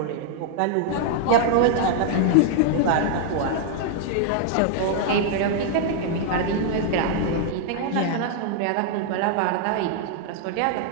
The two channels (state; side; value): different; both; correlation -0.01